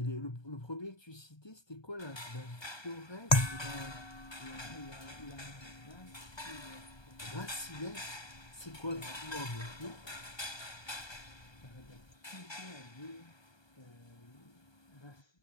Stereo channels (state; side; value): late; right; 1.2 ms